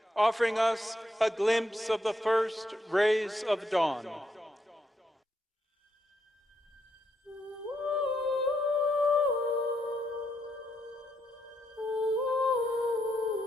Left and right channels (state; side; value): normal; both; correlation 0.78